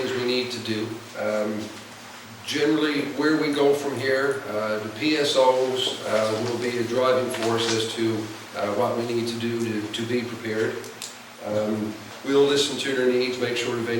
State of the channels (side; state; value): both; identical; correlation 1.00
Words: we need to do. Generally, where we go from here, the PSOs will be a driving force as to what we need to do to be prepared. We'll listen to their needs, make sure the